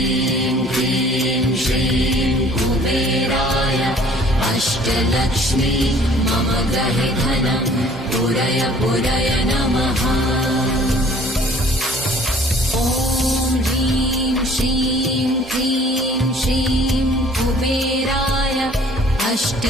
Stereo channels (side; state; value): both; normal; correlation 0.54